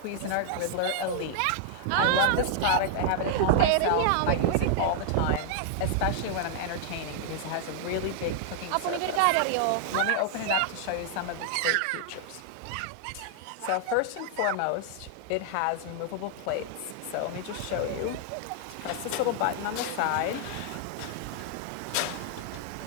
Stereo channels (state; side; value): different; both; correlation -0.01